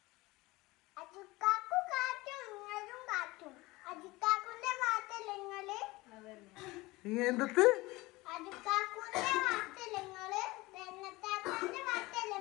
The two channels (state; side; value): quieter; right; 21.1 dB